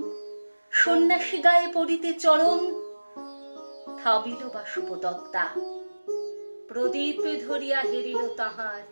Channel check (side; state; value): both; inverted; correlation -1.00